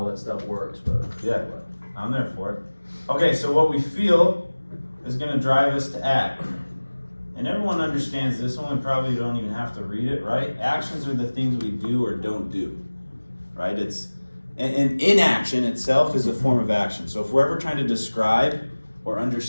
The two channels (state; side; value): inverted; both; correlation -1.00